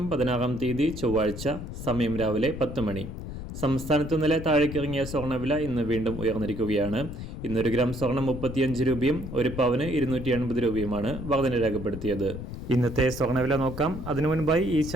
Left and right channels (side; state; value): left; noise; rumble, 8 dB below the sound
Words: 16 തീയതി ചൊവ്വാഴ്ച, സമയം രാവിലെ 10 മണി. സംസ്ഥാനത്ത് ഇന്നലെ താഴേക്കിറങ്ങിയ സ്വർണ്ണവില ഇന്ന് വീണ്ടും ഉയർന്നിരിക്കുകയാണ്. ഇന്നൊരു ഗ്രാം സ്വർണം 35 രൂപയും ഒരു പവന് 280 രൂപയുമാണ് വർധന രേഖപ്പെടുത്തിയത്. ഇന്നത്തെ സ്വർണ്ണവില നോക്കാം. അതിനു മുൻപായി ഈ